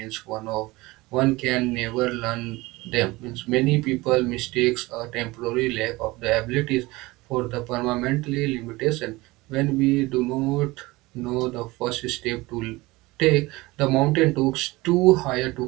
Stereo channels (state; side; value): quieter; left; 21.3 dB